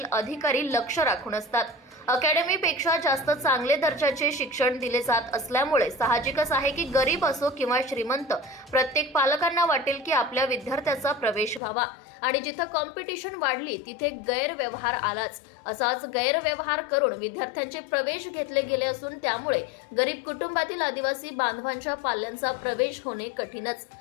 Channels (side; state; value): right; drops out; at 11.6 s